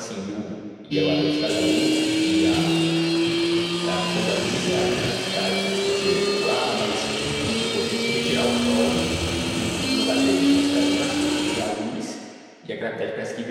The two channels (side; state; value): both; identical; correlation 1.00